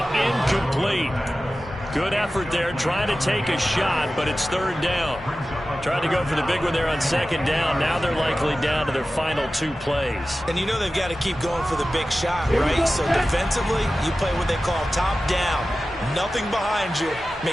Good effort there trying to take a shot, but it's 3rd down. Tried to go for the big one there on 2nd down. Now they're likely down to their final 2 plays. And you know they've got to keep going for the big shot, right? So defensively, you play what they call top down. Nothing behind you.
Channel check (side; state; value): both; normal; correlation 0.95